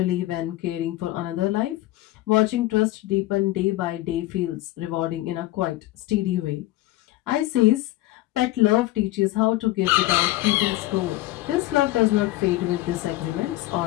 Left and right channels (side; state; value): right; quieter; 17.0 dB